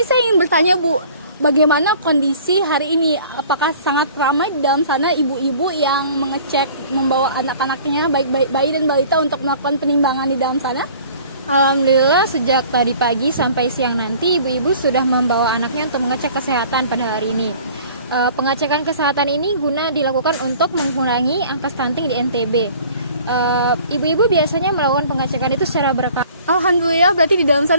saya ingin bertanya Bu, bagaimana kondisi hari ini? Apakah sangat ramai di dalam sana ibu-ibu yang mengecek membawa anak-anaknya, baik bayi dan balita, untuk melakukan penimbangan di dalam sana? Alhamdulillah sejak tadi pagi sampai siang nanti ibu-ibu sudah membawa anaknya untuk mengecek kesehatan pada hari ini. Pengecekan kesehatan ini guna dilakukan untuk mengurangi angka stunting di NTB. Ibu-ibu biasanya melakukan pengecekan itu secara berkala. Alhamdulillah, berarti di dalam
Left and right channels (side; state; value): both; inverted; correlation -0.50